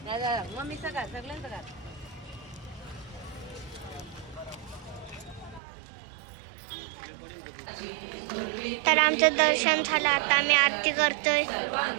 मम्मी सगळं सगळ्यांचं का तर आमचं दर्शन झालं आता आम्ही आरती करतोय.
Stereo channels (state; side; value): drops out; left; at 5.6 s